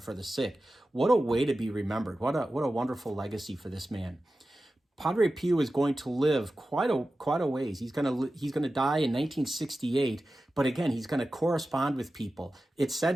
for the sick. What a way to be remembered. What a wonderful legacy for this man. Padre Pio is going to live quite a ways. He's going to die in 1968, but again, he's going to correspond with people. It's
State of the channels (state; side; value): normal; both; correlation 0.94